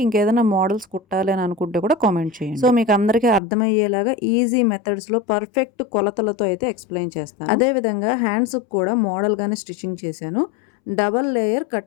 ఇంకేదైనా మోడల్స్ కుట్టాలి అని అనుకుంటే కూడా కామెంట్ చేయండి. సో మీకు అందరికీ అర్థమయ్యేలాగా ఈజీ మెథడ్స్లో పర్ఫెక్ట్ కొలతలతో అయితే ఎక్స్ప్లెయిన్ చేస్తాను. అదేవిధంగా హ్యాండ్స్కి కూడా మోడల్గానే స్టిచ్చింగ్ చేశాను, double layer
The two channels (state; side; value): drops out; right; at 3.4 s